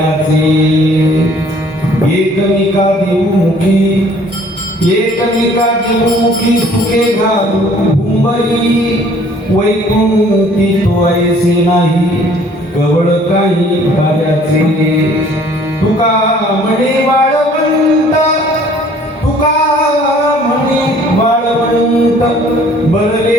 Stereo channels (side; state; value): both; normal; correlation 0.56